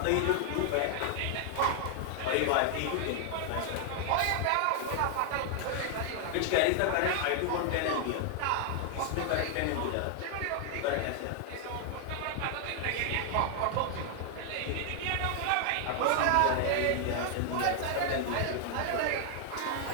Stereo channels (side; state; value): both; different; correlation 0.00